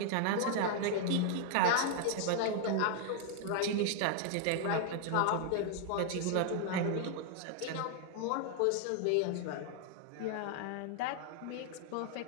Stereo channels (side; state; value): both; different; correlation 0.00